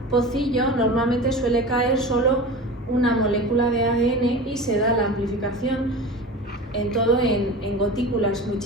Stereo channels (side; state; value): both; normal; correlation 0.32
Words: pocillo normalmente suele caer solo una molécula de ADN y se da la amplificación en todo en gotículas muy